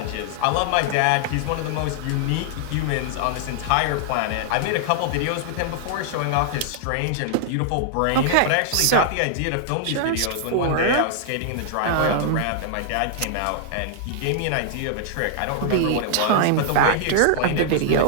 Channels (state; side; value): different; both; correlation -0.01